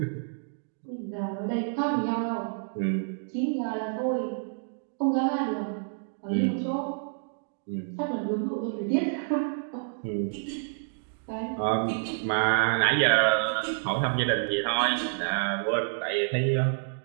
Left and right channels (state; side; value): silent; left; digital silence